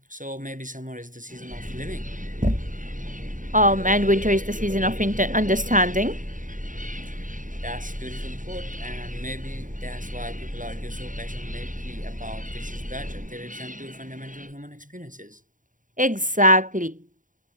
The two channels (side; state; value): left; late; 0.38 ms